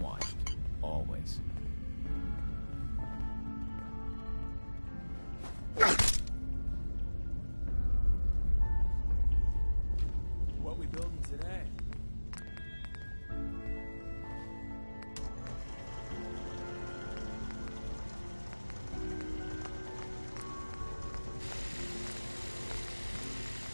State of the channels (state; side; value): inverted; both; correlation -1.00